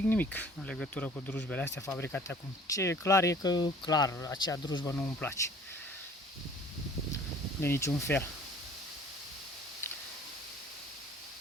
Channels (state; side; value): normal; both; correlation 0.51